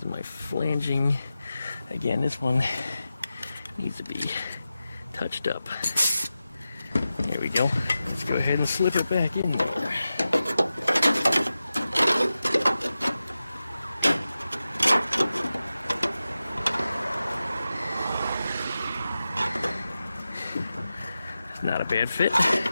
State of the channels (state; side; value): inverted; both; correlation -0.93